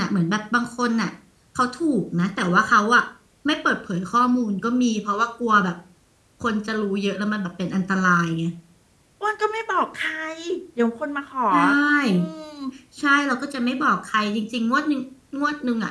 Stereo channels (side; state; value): both; identical; correlation 1.00